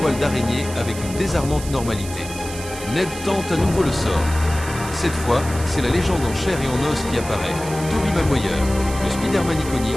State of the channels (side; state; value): right; noise; hiss, 12 dB below the sound